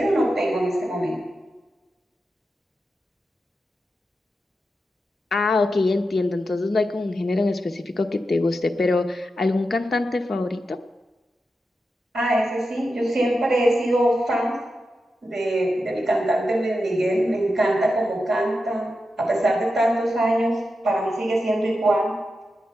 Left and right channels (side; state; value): both; normal; correlation 0.89